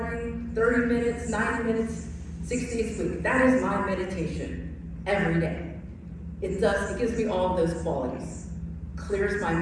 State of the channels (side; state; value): both; identical; correlation 1.00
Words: 30 minutes, 90 minutes, 6 days a week. That is my meditation every day. It gives me all of those qualities. Clears my